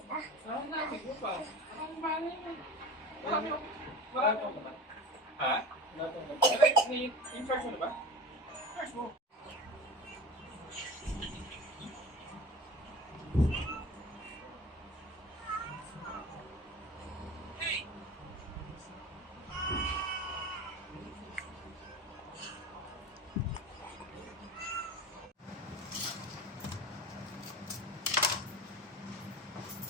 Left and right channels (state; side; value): normal; both; correlation 0.33